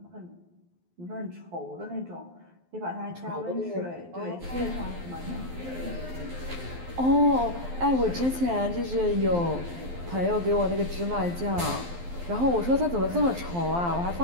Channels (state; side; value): late; left; 12 ms